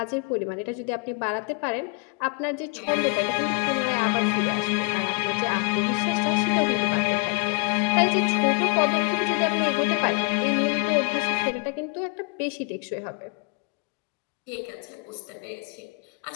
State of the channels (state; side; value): quieter; right; 32.7 dB